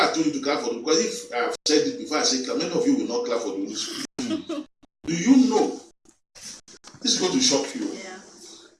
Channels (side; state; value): both; identical; correlation 1.00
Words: told you to clap for them because if I have said it before I say clap, many of you will not clap for the Holy Spirit. Do you know? This is going to shock you. yeah.